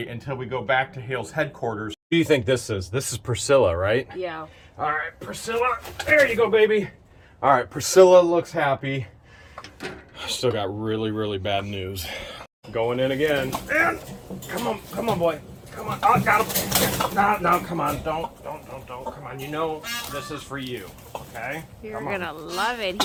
until we go back to Hale's headquarters. What do you think this is? This is Priscilla, right? Yeah. All right, Priscilla, there you go, baby. All right, Priscilla looks happy. Still got really, really bad news. Going in again. And come on, boy. Come on, oh, got him. No, come on, don't. Come on, you know this is for you, okay? You're gonna love it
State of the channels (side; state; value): both; identical; correlation 1.00